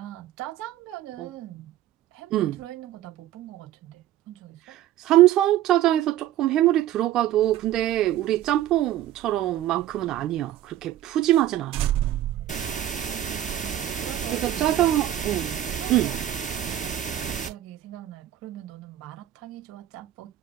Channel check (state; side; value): quieter; left; 12.8 dB